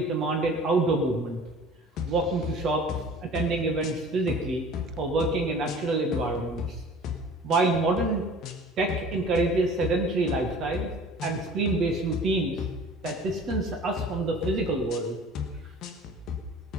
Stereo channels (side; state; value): both; normal; correlation 0.45